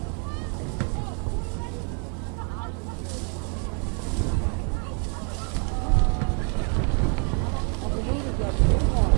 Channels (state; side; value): quieter; left; 38.8 dB